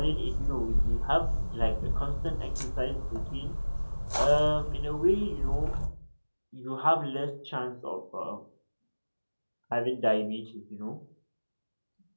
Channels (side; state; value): both; inverted; correlation -1.00